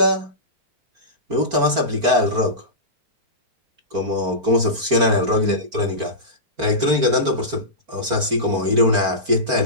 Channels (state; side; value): late; left; 4.4 ms